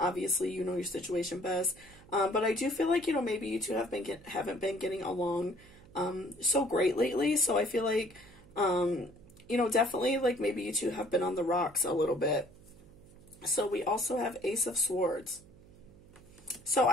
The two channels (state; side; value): noise; right; hum, 23 dB below the sound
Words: you know your situation best, but I do feel like, you know, maybe you two haven't been getting along so great lately. So I feel like, you know, definitely like maybe you two have been on the rocks a little bit. So we also have Ace of Swords. So